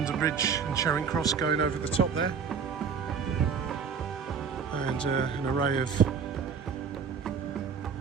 Bridge and Charing Cross going over the top there, and an array of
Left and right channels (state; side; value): quieter; left; 6.4 dB